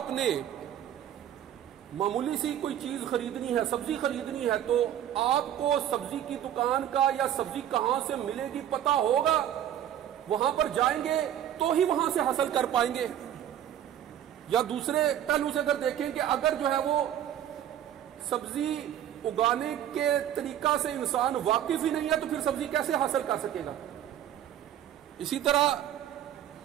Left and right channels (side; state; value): left; quieter; 10.8 dB